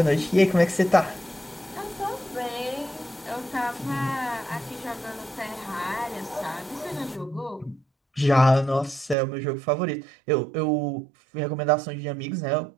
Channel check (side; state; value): left; drops out; at 9.2 s